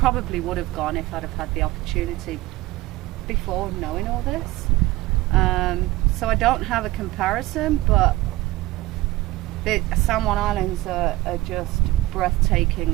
would have gone if I'd have had the opportunity before knowing all this. So I don't have a comparison, but the San Juan Islands are just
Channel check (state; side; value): quieter; left; 18.6 dB